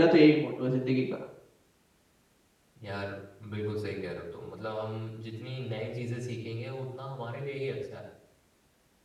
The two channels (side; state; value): both; identical; correlation 1.00